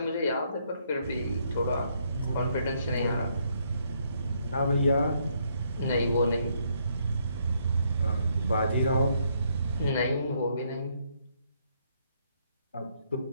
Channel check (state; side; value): inverted; both; correlation -0.72